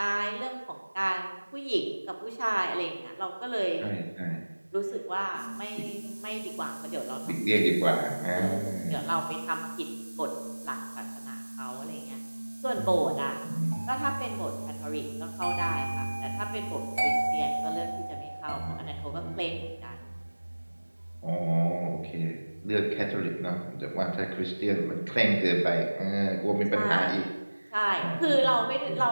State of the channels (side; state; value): both; inverted; correlation -1.00